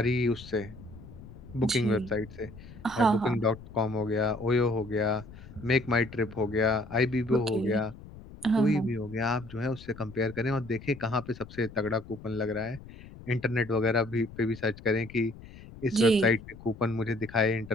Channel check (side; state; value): left; noise; rumble, 17 dB below the sound